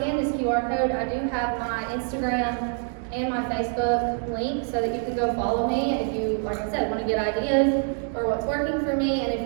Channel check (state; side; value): silent; left; 55 dB below the other